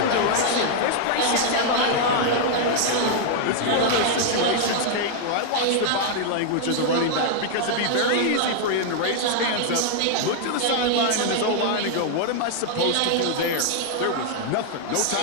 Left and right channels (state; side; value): different; both; correlation 0.00